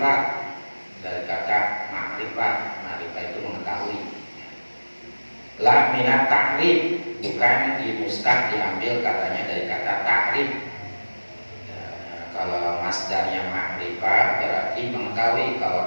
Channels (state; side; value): inverted; both; correlation -1.00